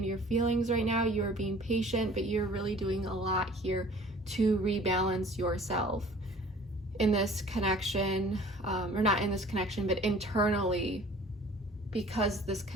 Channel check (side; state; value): both; normal; correlation 0.49